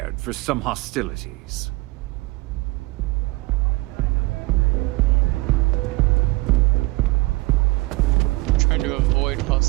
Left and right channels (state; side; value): quieter; left; 22.3 dB